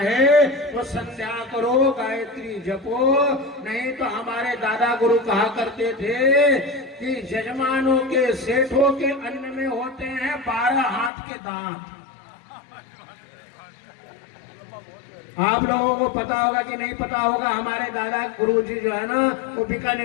तो संध्या करो, गायत्री जपो। नहीं तो हमारे दादा गुरु कहा करते थे कि यजमानों के, सेठों के अन्न में होते हैं 12 हाथ के दांत। आप लोगों को पता होगा कि नहीं पता होगा, हमारे दादा गुरुजी जो है ना वो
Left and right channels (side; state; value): right; drops out; at 11.1 s